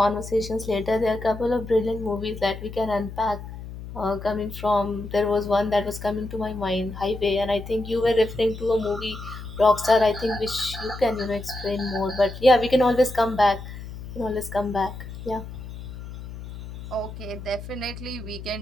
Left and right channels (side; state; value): left; noise; hum, 11 dB below the sound